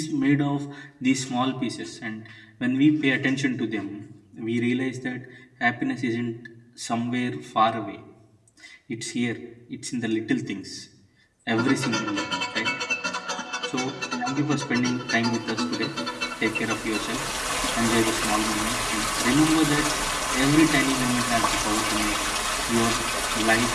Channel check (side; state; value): both; identical; correlation 1.00